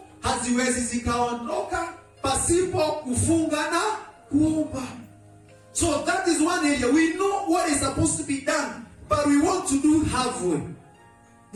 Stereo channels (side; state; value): both; identical; correlation 1.00